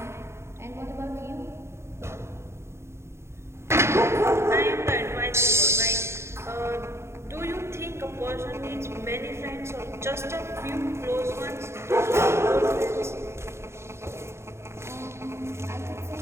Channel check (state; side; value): late; left; 0.13 ms